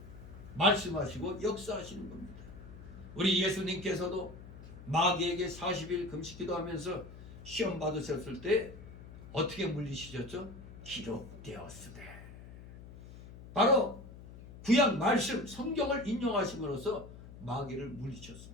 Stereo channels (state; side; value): noise; left; hum, 15 dB below the sound